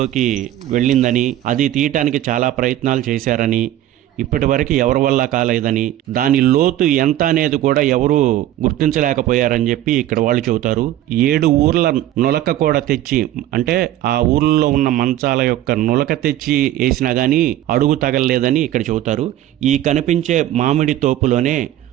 వెళ్ళిందని, అది తీయటానికి చాలా ప్రయత్నాలు చేశారని, ఇప్పటి వరకు ఎవరి వల్ల కాలేదని, దాని లోతు ఎంత అనేది కూడా ఎవరు గుర్తించలేకపోయారని చెప్పి ఇక్కడ వాళ్ళు చెబుతారు. 7 ఊర్ల నులక కూడా తెచ్చి, అంటే ఆ ఊర్లో ఉన్న మంచాల యొక్క నులక తెచ్చి వేసినా కానీ అడుగు తగలలేదని ఇక్కడ చెబుతారు. ఈ కనిపించే మామిడి తోపులోనే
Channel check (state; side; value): quieter; left; 13.2 dB